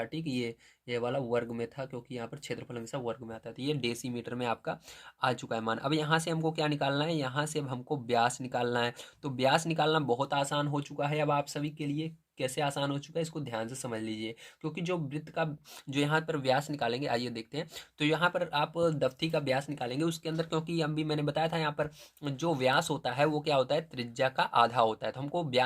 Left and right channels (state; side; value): identical; both; correlation 1.00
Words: ठीक है। ये वाला वर्ग में था, क्योंकि यहाँ पर क्षेत्रफल हमेशा वर्ग में आता है, तो ये डेसीमीटर में आपका आ चुका है मान। अब यहाँ से हमको क्या निकालना है, यहाँ से अब हमको व्यास निकालना है। तो व्यास निकालना बहुत आसान हो चुका है अब आप सभी के लिए, कैसे आसान हो चुका है, इसको ध्यान से समझ लीजिए। क्योंकि जो वृत्त का जो यहाँ पर व्यास निकालेंगे, आइए देखते हैं। तो यहाँ पर आप दफ्ती का व्यास निकालेंगे, उसके अंदर क्योंकि अभी मैंने बताया था यहाँ पर जो व्यास होता है वो क्या होता है, त्रिज्या का आधा होता है। तो हमको